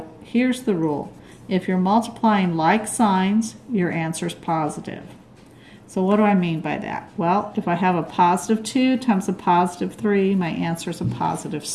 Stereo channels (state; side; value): identical; both; correlation 1.00